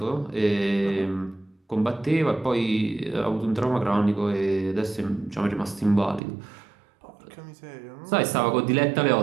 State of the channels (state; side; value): drops out; left; at 6.2 s